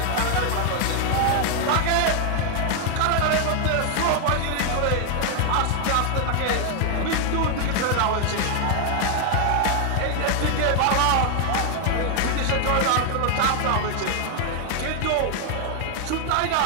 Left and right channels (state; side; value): different; both; correlation 0.00